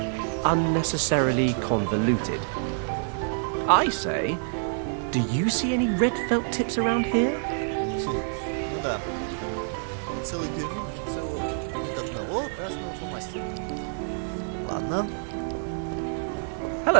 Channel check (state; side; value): silent; left; digital silence